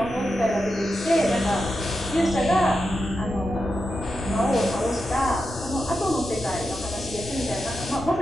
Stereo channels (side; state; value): both; normal; correlation 0.89